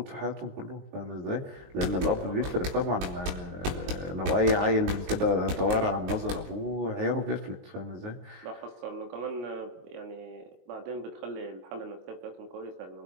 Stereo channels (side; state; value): left; late; 22 ms